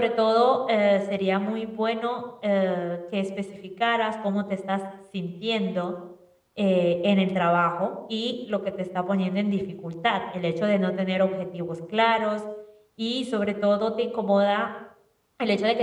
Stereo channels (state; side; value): identical; both; correlation 1.00